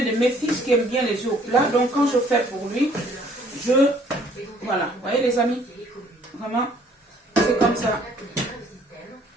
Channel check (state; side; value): normal; both; correlation 0.60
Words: de mes fils qui aime bien les œufs au plat, donc quand je fais pour lui, voilà, vous voyez les amis, vraiment, c'est comme ça.